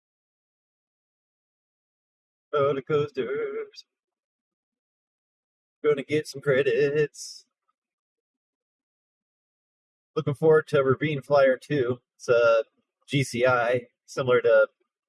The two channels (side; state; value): both; identical; correlation 1.00